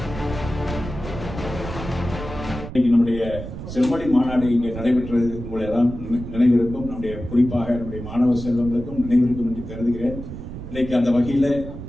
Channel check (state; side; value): noise; right; rumble, 10 dB below the sound